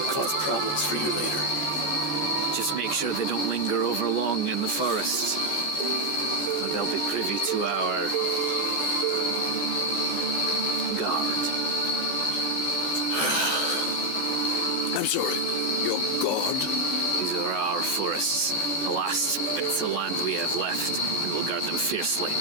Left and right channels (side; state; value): right; late; 14 ms